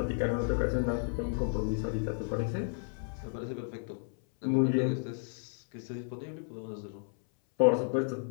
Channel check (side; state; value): right; silent; 56 dB below the other